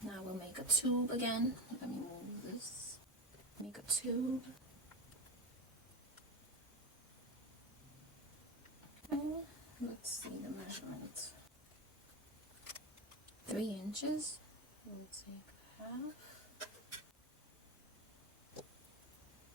Now we'll make a tube again. Let me move this. Make a tube. Okay, let's see the measurement. 3 inches. We'll take half.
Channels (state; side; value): normal; both; correlation 0.21